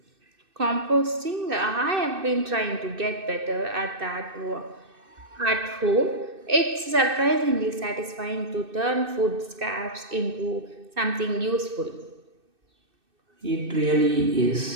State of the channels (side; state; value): left; late; 2.6 ms